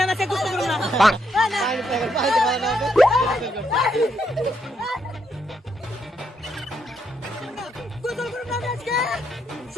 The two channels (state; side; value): normal; both; correlation 0.77